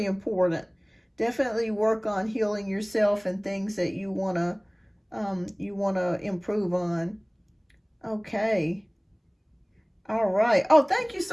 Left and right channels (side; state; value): both; identical; correlation 1.00